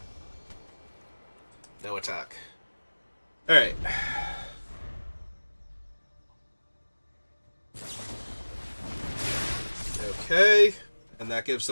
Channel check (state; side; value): inverted; both; correlation -1.00